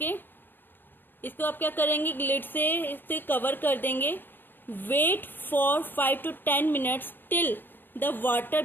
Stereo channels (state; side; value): late; right; 0.095 ms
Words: इसको आप क्या करेंगे, लिड से इससे कवर कर देंगे। Wait for 5 to 10 minutes till the water